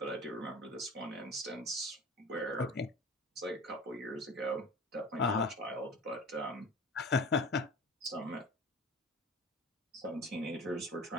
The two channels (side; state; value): both; normal; correlation 0.38